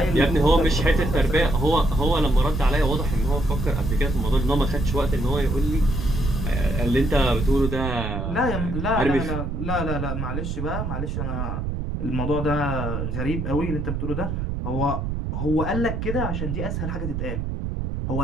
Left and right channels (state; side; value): noise; right; rumble, 3 dB below the sound